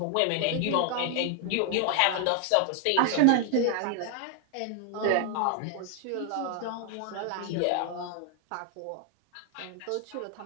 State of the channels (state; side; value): different; both; correlation 0.00